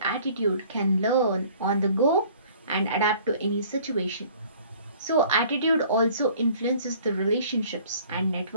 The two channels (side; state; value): both; inverted; correlation -0.53